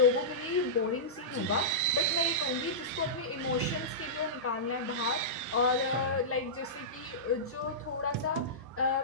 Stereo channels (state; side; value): normal; both; correlation -0.16